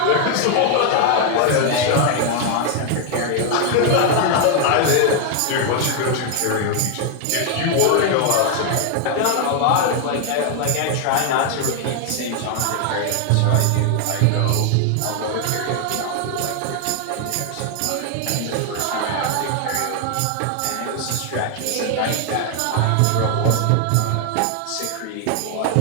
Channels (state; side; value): different; both; correlation 0.00